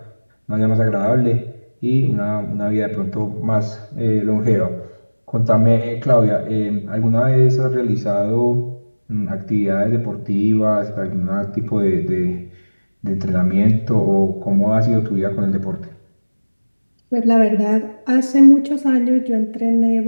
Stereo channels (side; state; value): both; inverted; correlation -1.00